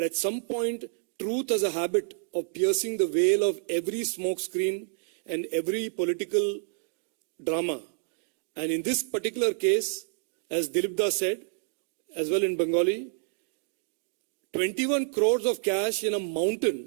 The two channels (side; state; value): left; silent; digital silence